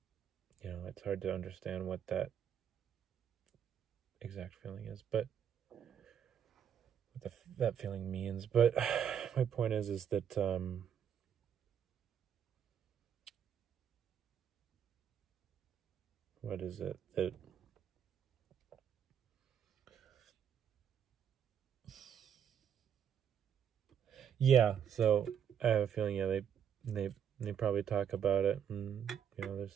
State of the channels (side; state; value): left; quieter; 8.6 dB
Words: it's hard to understand what that exact feeling is, but what that feeling means. But my point is that what is it that yeah, so I have a feeling, yeah, they probably talk about it, and they're